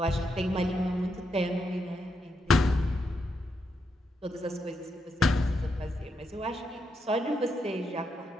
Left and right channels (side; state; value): both; normal; correlation 0.82